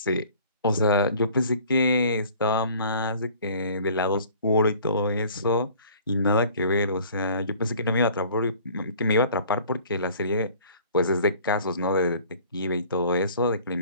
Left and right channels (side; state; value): both; inverted; correlation -0.51